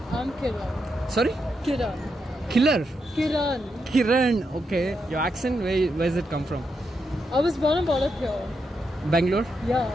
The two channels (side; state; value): both; normal; correlation 0.83